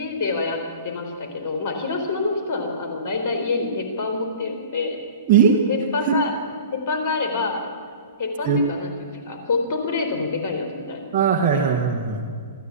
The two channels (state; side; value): inverted; both; correlation -0.38